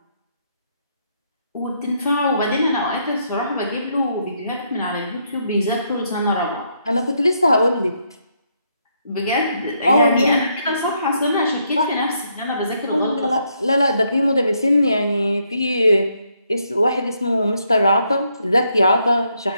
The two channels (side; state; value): both; inverted; correlation -0.75